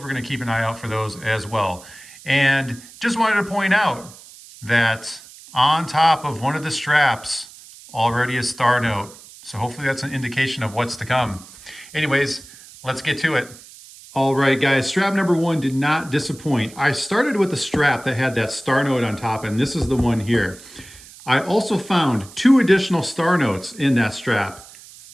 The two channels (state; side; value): noise; right; hiss, 20 dB below the sound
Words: we're going to keep an eye out for those as well. And just wanted to point out that on top of one of the straps, already a star note. So hopefully that's an indication of what's to come. Anyways, let's get to it. All right, guys, strap number one did not disappoint. I started with the strap that had that star note on top, and this is the one here. I also found two additional star notes in that strap.